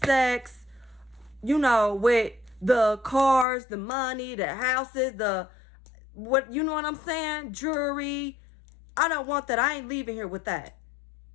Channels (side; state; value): right; drops out; at 3.5 s